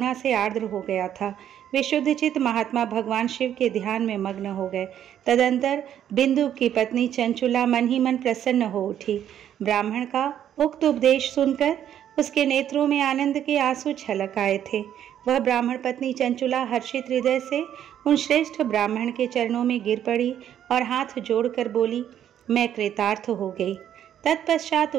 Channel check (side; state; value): left; quieter; 10.3 dB